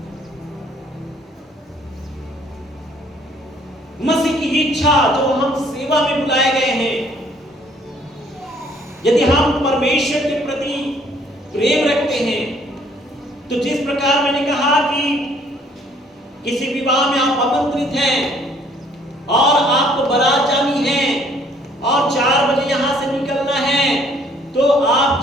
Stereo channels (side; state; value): both; normal; correlation 0.61